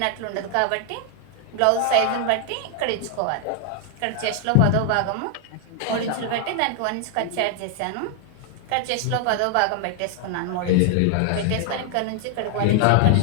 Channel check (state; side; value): different; both; correlation 0.00